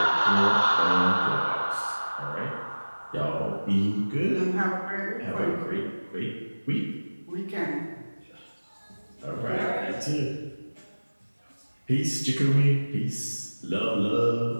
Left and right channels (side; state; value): both; inverted; correlation -1.00